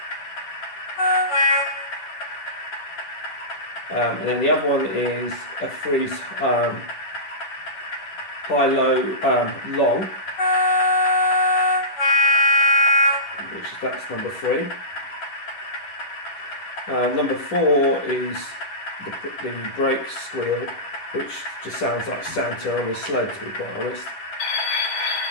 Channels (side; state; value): right; late; 11 ms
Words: and then the other one is F3's high-low long, which is, that's number 3. Number 4 is the brake squeal, which just sounds like Santa on his sled, to be quite honest.